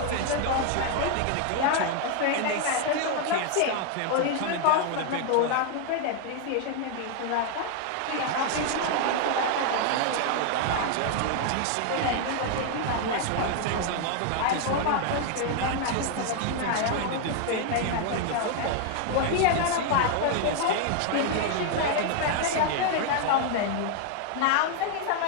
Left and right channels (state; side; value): different; both; correlation 0.00